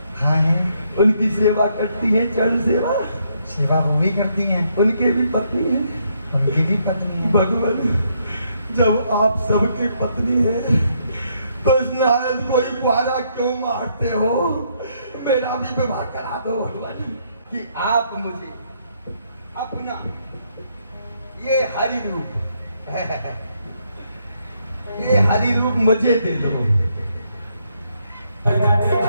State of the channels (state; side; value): inverted; both; correlation -0.73